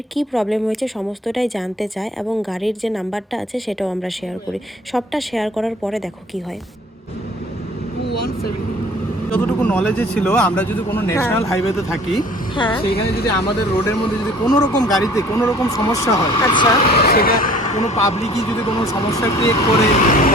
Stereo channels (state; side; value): normal; both; correlation 0.51